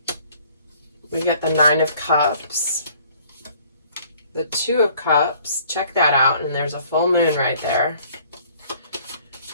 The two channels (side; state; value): both; inverted; correlation -0.57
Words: We get the Nine of Cups, the Two of Cups. Check that out, and there's a full moon right there.